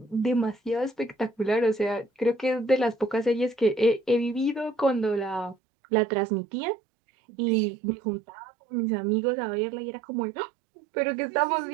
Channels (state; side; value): drops out; left; at 5.6 s